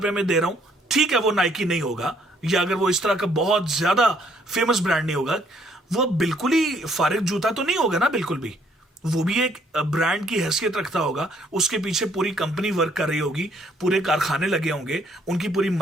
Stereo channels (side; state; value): both; normal; correlation 0.66